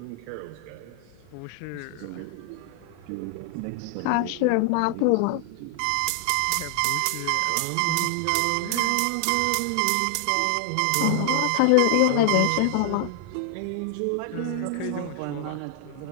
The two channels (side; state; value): both; different; correlation 0.00